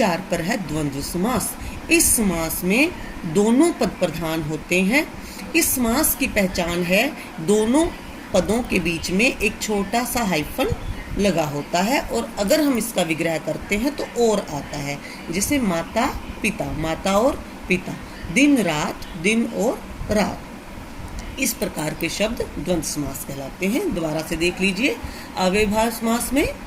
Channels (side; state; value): both; identical; correlation 1.00